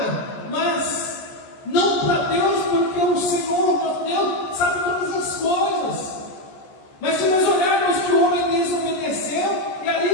mas não para Deus, porque o Senhor, nosso Deus, sabe todas as coisas. Mas se nós olharmos que o homem desobedeceu, e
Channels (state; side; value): late; right; 14 ms